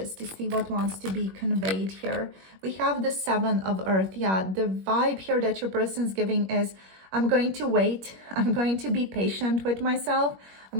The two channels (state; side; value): late; left; 21 ms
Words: to see what wants to be conveyed here. We have the Seven of Earth. Yeah, the vibe here that your person's giving is, I'm going to wait. I'm going to be patient with myself.